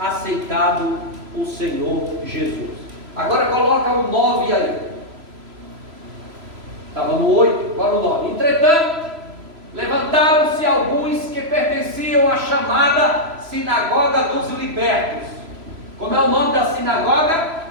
o Senhor Jesus. Agora coloca o 9 aí. Estava no 8, agora o 9. Entretanto, levantaram-se alguns que pertenciam à chamada Sinagoga dos Libertos. Como é o nome da sinagoga?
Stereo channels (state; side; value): late; left; 3.0 ms